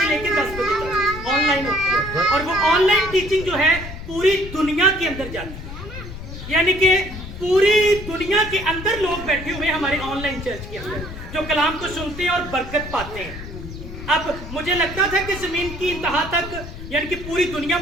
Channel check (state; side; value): noise; left; rumble, 11 dB below the sound